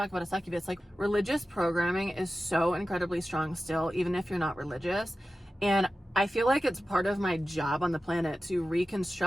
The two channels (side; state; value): both; normal; correlation 0.94